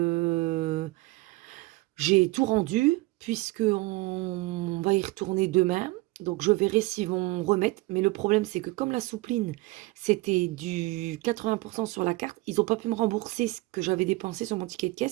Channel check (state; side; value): quieter; left; 21.4 dB